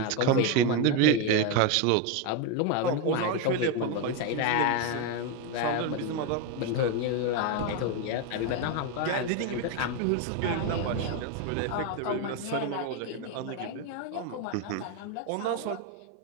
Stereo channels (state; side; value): different; both; correlation 0.02